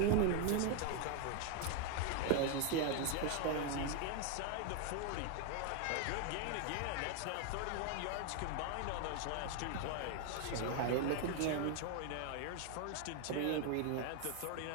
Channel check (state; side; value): different; both; correlation 0.01